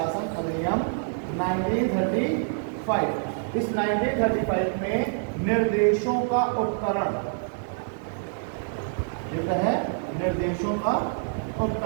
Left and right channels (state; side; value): silent; left; 56 dB below the other